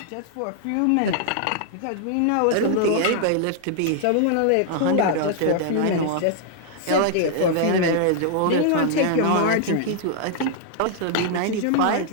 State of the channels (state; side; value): different; both; correlation -0.01